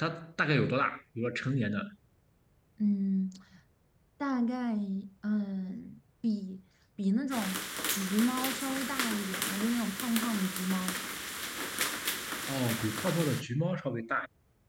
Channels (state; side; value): identical; both; correlation 1.00